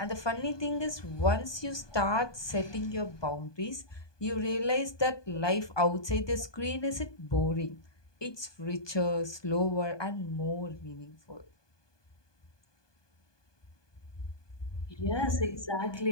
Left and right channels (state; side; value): late; right; 1.2 ms